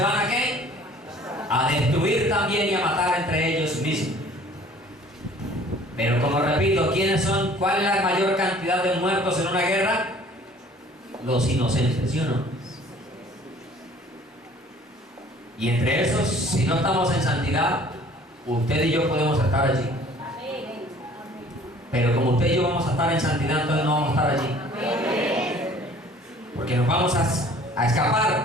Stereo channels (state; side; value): normal; both; correlation 0.52